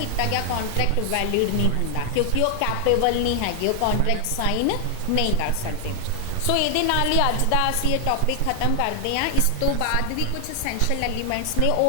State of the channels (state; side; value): different; both; correlation 0.00